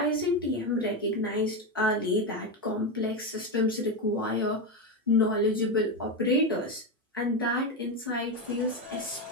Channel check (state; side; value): normal; both; correlation 0.11